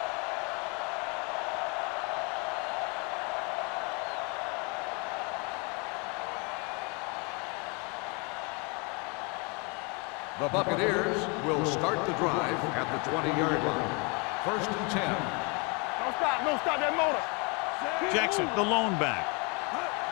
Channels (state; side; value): quieter; right; 31.8 dB